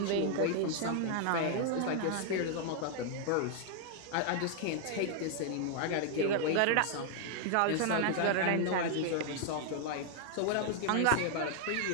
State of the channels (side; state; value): both; different; correlation 0.00